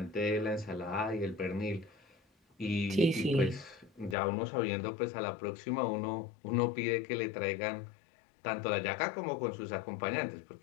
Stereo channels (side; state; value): right; drops out; at 4.2 s